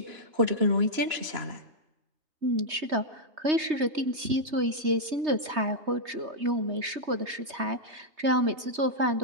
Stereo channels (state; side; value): late; left; 3.2 ms